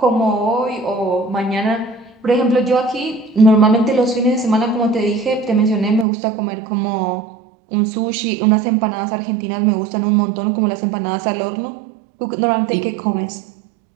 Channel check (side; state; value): left; drops out; at 6.1 s